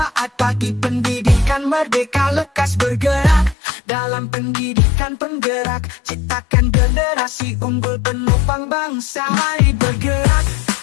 bagi pendidikan merdeka. Lekas bergerak dalam pendidikan penggerak, ciptakan generasi unggul penopang bangsa. Mari bergerak,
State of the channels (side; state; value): right; drops out; at 3.6 s